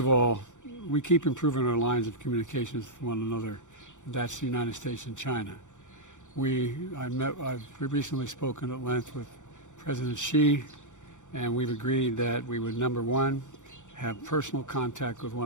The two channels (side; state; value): right; late; 0.85 ms